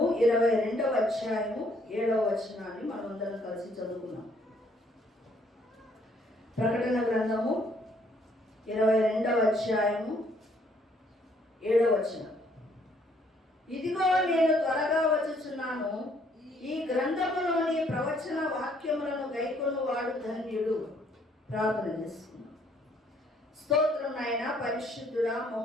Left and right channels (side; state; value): both; normal; correlation 0.66